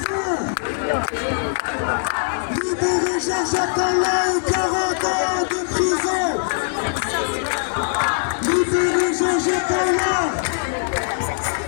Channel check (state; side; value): silent; right; digital silence